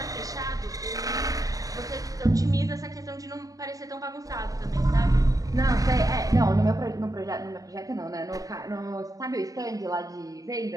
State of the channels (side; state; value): left; late; 0.17 ms